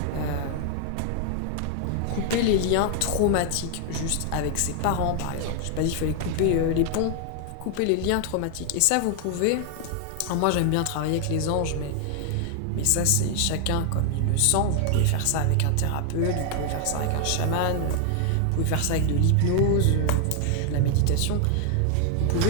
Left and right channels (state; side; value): different; both; correlation 0.00